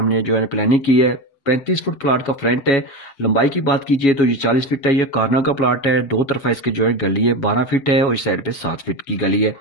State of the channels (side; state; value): right; late; 7.2 ms